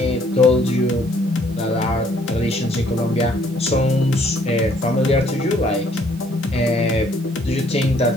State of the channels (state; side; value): normal; both; correlation 0.64